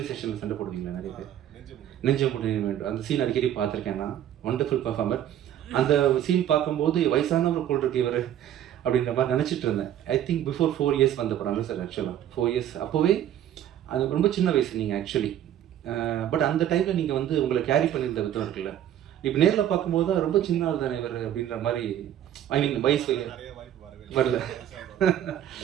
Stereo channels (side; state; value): left; quieter; 11.2 dB